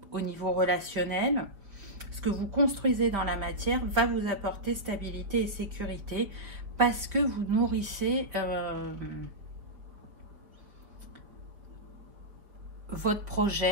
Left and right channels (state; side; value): late; left; 4.6 ms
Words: au niveau relationnel. Ce que vous construisez dans la matière va vous apporter stabilité et sécurité, parce que vous nourrissez votre